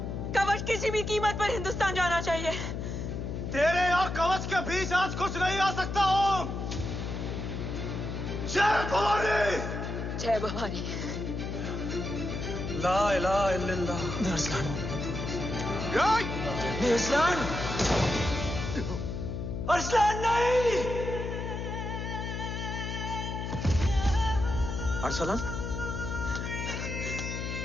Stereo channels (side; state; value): left; noise; hum, 4 dB below the sound